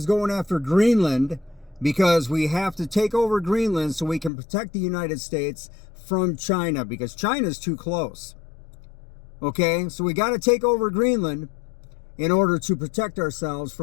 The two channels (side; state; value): right; drops out; at 4.3 s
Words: going after Greenland because we have to take over Greenland so we can protect the United States from China because China's too close. Okay, so we got to take over Greenland in order to protect ourselves